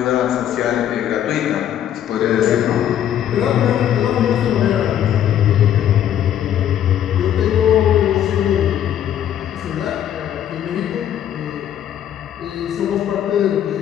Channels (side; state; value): right; quieter; 10.5 dB